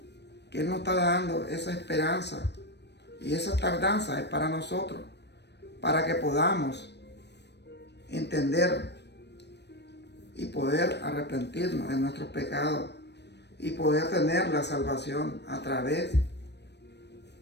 que Él nos está dando esa esperanza y esa tardanza es para nosotros, para que podamos entender y poder arrepentirnos de nuestros pecados y poder tener la salvación a través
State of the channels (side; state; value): right; late; 0.50 ms